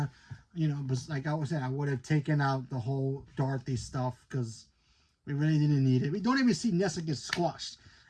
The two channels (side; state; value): both; identical; correlation 1.00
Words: You know, but like I was saying, I would have taken out the whole Dorothy stuff because we really didn't need it. We don't even see Nessa get squashed.